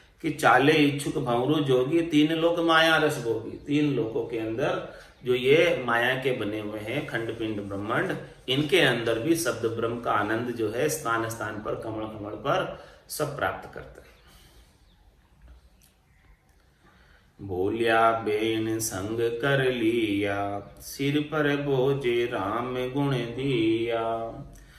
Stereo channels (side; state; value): both; identical; correlation 1.00